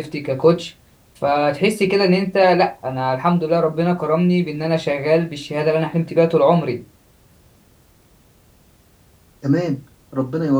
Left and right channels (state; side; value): identical; both; correlation 1.00